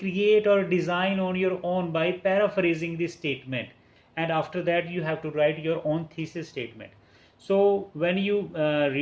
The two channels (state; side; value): identical; both; correlation 1.00